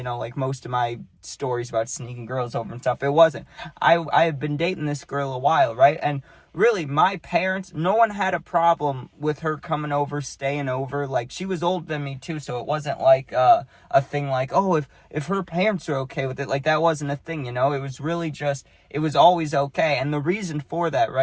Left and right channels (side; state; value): both; identical; correlation 1.00